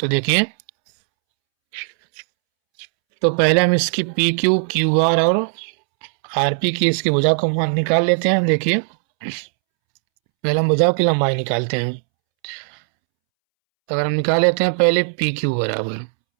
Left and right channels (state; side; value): silent; left; 67 dB below the other